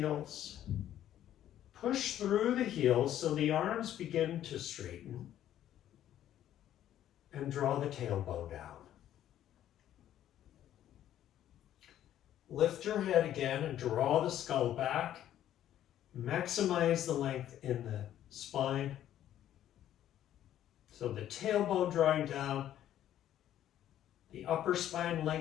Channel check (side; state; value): right; quieter; 11.6 dB